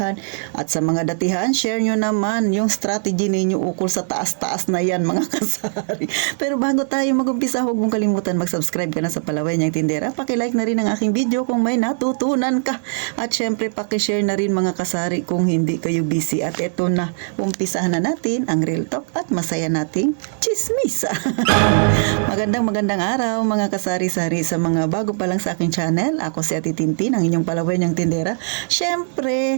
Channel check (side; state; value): left; silent; digital silence